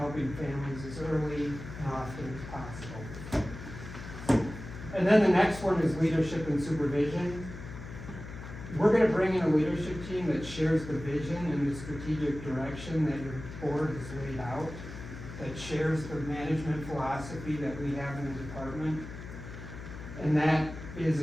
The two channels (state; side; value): noise; left; hum, 11 dB below the sound